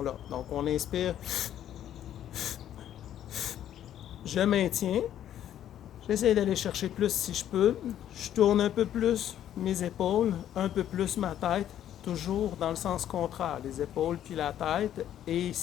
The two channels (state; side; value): quieter; right; 11.0 dB